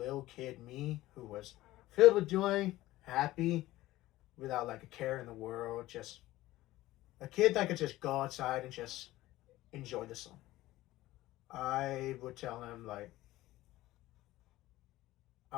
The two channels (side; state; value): right; quieter; 16.7 dB